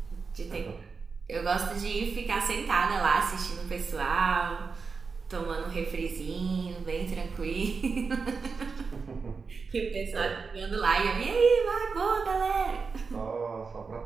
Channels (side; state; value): left; quieter; 4.9 dB